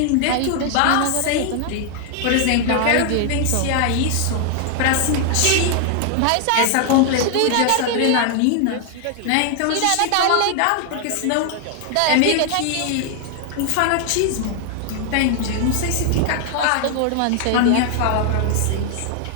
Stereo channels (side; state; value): both; different; correlation 0.00